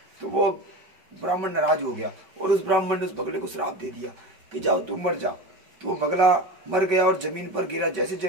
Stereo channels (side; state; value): left; late; 5.2 ms